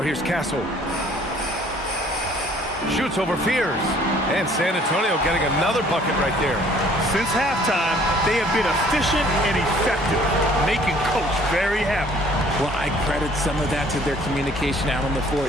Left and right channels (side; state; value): both; normal; correlation 0.57